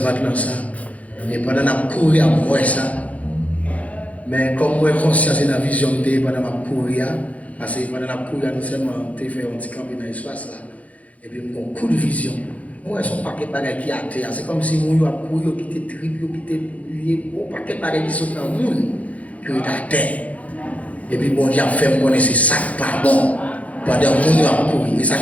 maintenant ça. Et pendant qu'on a couru à moi ça. Mais comme moi, conscience et la vision de pendant qu'on a couru, parce que pendant qu'on a couru, nous seulement fait un petit camp dans l'espace là. Et puis, mon coup de vision. Moi, son paquet de bagailles qui a terre. C'est comme si mon a couru, qui était triple, qui était lié, un paquet de bagailles qui sont dans le monde, qui est à terre. Et puis, bon Dieu a fait me connaître ça pas bon. Pendant que mon a couru. Et ça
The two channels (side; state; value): right; late; 0.068 ms